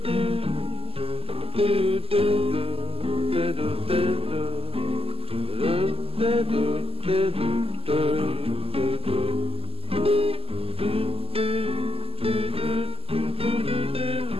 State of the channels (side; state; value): left; late; 0.28 ms